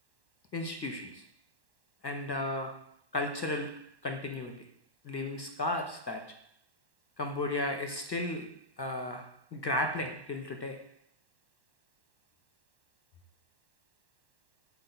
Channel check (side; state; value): right; late; 1.1 ms